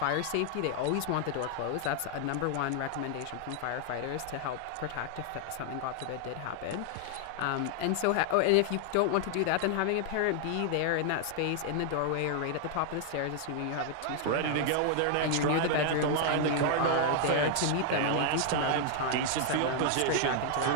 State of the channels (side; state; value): both; different; correlation 0.00